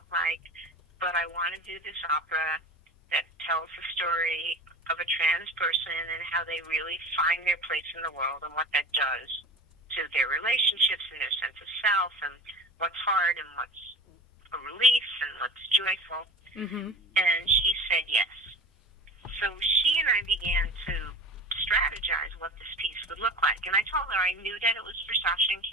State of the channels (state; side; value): normal; both; correlation 0.34